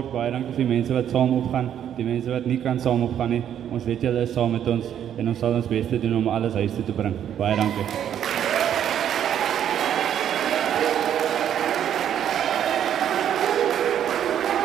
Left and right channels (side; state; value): left; quieter; 9.8 dB